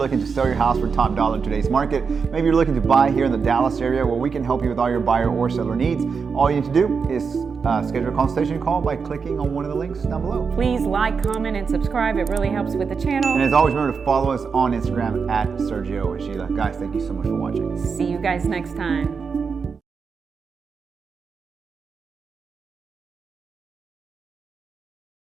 to sell your house for top dollar in today's market. Maybe you're looking to buy here in the Dallas area, where we can help you with all your buyer or seller needs. All you need to do is schedule a consultation call by clicking on one of the links down below. Please like, comment, and subscribe. It really helps with the channel. And as always, remember to follow us on Instagram at Sergio Sheila. Guys, thank you so much for watching. See you guys next time.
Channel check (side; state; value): left; quieter; 5.6 dB